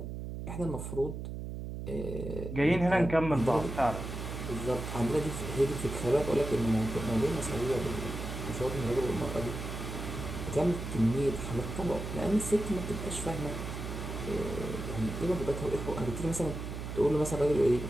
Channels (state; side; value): noise; right; hum, 6 dB below the sound